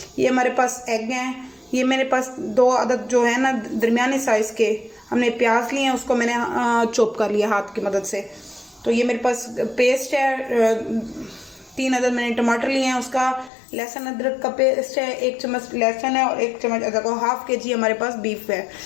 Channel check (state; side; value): drops out; right; at 13.5 s